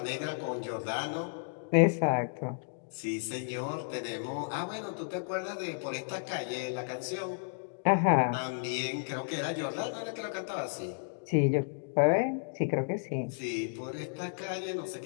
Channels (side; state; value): right; silent; digital silence